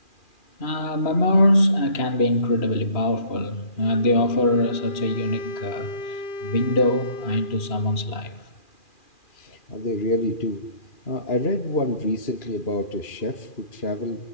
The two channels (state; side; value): late; right; 2.4 ms